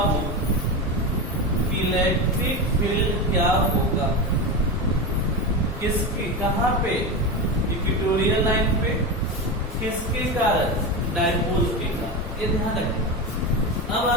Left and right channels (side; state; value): both; normal; correlation 0.19